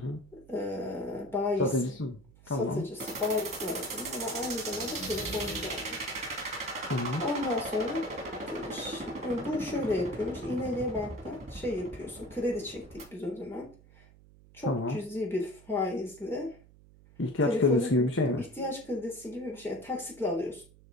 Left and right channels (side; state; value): right; noise; hum, 24 dB below the sound